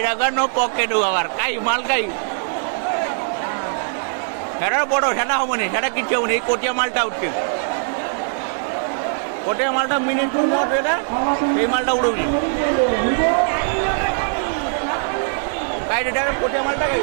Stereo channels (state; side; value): silent; left; 65 dB below the other